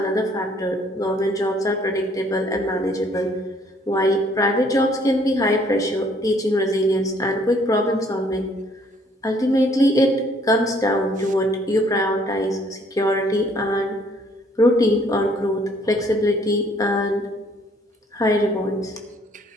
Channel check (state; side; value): normal; both; correlation 0.62